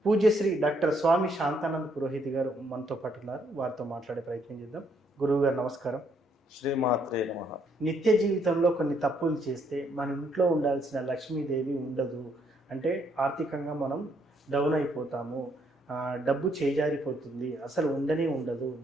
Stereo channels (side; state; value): both; normal; correlation 0.71